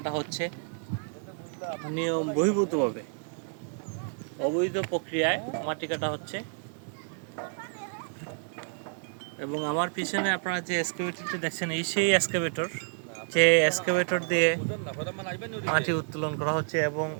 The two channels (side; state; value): left; silent; 58 dB below the other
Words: হচ্ছে নিয়ম বহির্ভূতভাবে, অবৈধ প্রক্রিয়ায় মাটি কাটা হচ্ছে। এবং আমার পিছনে আপনারা যে এক্সকাভেটরটি দেখছেন, এই সেই এক্সকাভেটর, যে এক্সকাভেটর দিয়ে মাটি উত্তোলন করা হচ্ছে এবং